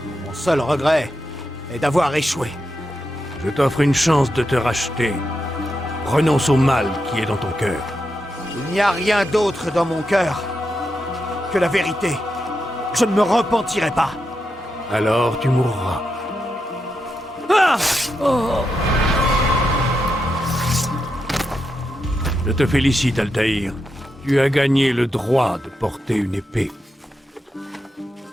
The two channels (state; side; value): normal; both; correlation 0.86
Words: Mon seul regret est d'avoir échoué. Je t'offre une chance de te racheter. Renonce au mal qui est dans ton cœur. Il n'y a rien d'autre dans mon cœur que la vérité. Je ne me repentirai pas. Alors tu mourras. Ah! Oh! Je te félicite, Altaïr. Tu as gagné le droit de porter une épée.